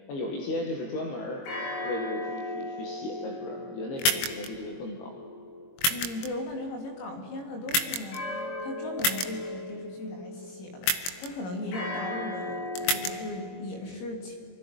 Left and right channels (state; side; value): late; right; 22 ms